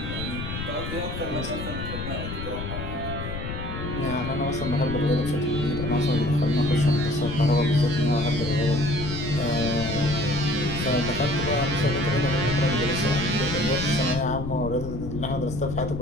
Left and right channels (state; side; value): noise; left; rumble, 6 dB below the sound